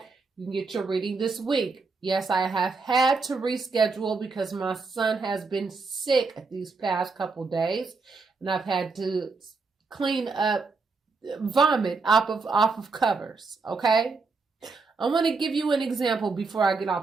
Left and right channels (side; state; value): left; quieter; 4.3 dB